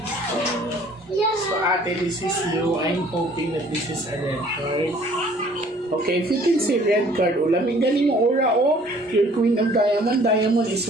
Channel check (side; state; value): both; normal; correlation 0.55